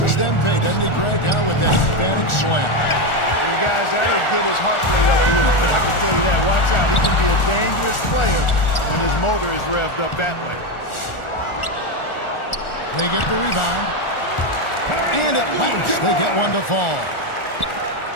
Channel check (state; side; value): late; right; 1.4 ms